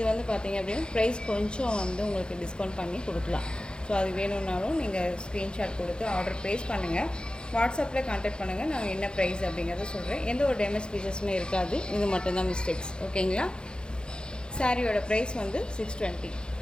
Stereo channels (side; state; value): right; late; 0.049 ms